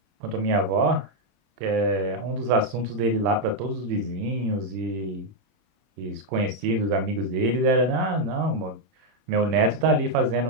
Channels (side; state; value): left; late; 27 ms